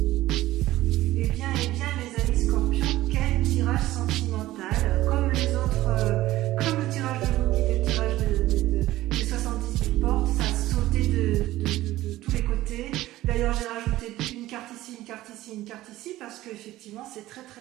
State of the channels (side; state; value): left; quieter; 16.1 dB